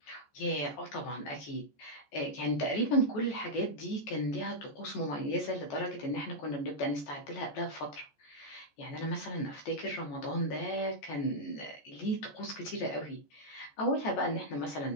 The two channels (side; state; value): right; late; 14 ms